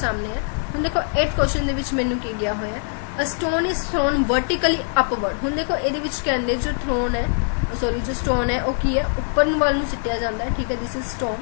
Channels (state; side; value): silent; right; 58 dB below the other